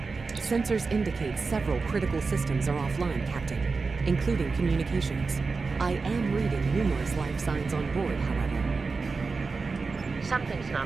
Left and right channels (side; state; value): left; quieter; 4.4 dB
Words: Sensors indicate several critical systems are offline, Captain, including communications. I am reading numerous life signs on board, however. Something's